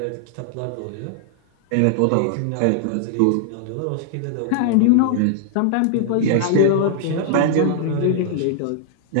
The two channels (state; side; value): different; both; correlation -0.01